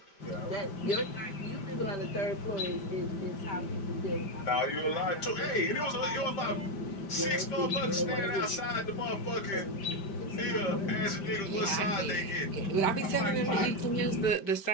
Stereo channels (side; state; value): right; late; 5.1 ms